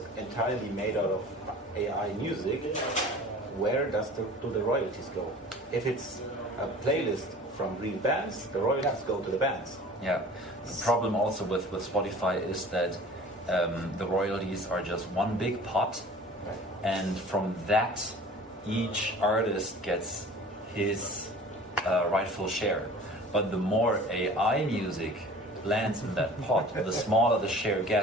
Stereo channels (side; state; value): both; normal; correlation 0.44